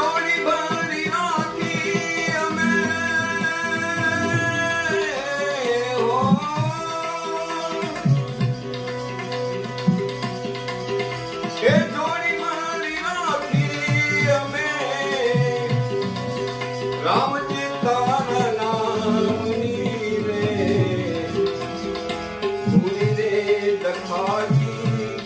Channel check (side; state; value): both; identical; correlation 1.00